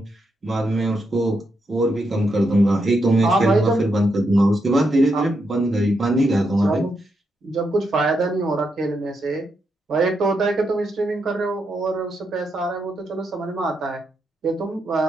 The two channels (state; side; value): normal; both; correlation 0.82